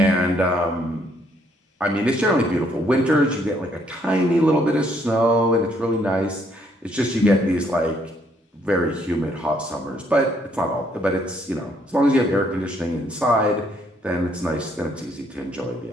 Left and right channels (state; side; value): normal; both; correlation 0.69